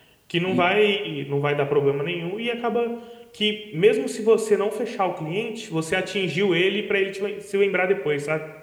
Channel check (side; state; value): both; identical; correlation 1.00